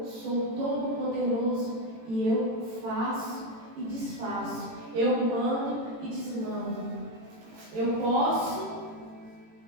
sou todo poderoso e eu faço e desfaço, eu mando e desmando. Eu posso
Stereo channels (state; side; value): late; left; 18 ms